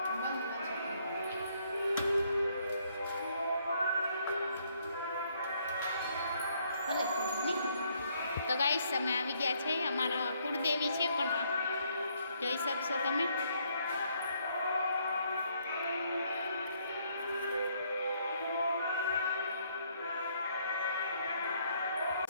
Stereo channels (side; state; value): both; inverted; correlation -0.69